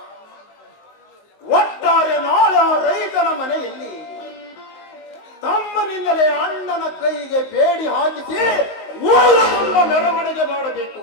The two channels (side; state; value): right; late; 19 ms